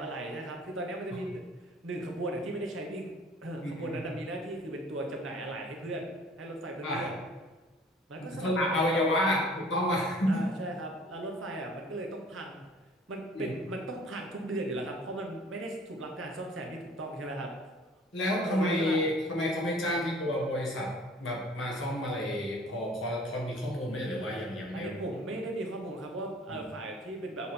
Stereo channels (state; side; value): normal; both; correlation 0.51